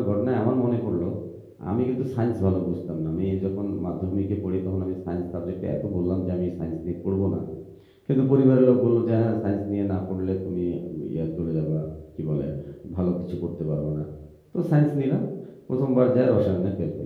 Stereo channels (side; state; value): both; identical; correlation 1.00